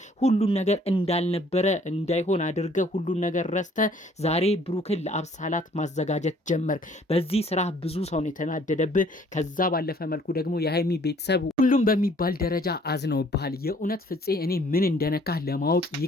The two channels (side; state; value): both; normal; correlation 0.59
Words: ሁሉን ነገር እንዳልነበረ እንዳይሆን አድርገህ ሁሉን ነገር ረስተህ ዛሬ ብሩክን ለአብሳላት ማዘጋጀት ጀመርክ። በዚህ ስራ ብዙ ሰው ነው የተናደደብህ። ከዛ ባለፈ መልኩ ደግሞ የሀይሚ ቤተሰብ ሁሉም በሚባል ደረጃ አዝነውብሃል። የእውነት ፍፄ እኔ ምን እንደነካህ ለማወቅ